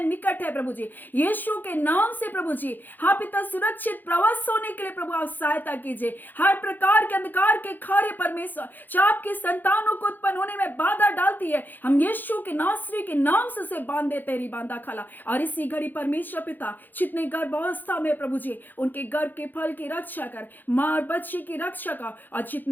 है प्रभु जी, यीशु के नाम से प्रभु जी, हाँ पिता, सुरक्षित प्रवास होने के लिए प्रभु आप सहायता कीजिए। हर प्रकार के अंधकार के कार्य परमेश्वर जो आपके संतानों को उत्पन्न होने में बाधा डालती है, हम यीशु के नासरी के नाम से उसे बांध दे तेरी बांधा खाला। और इसी घड़ी परमेश्वर पिता जितने गर्भावस्था में प्रभु जी, उनके गर्भ के फल की रक्षा कर, माँ और बच्चे की रक्षा कर, और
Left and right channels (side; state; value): right; late; 0.088 ms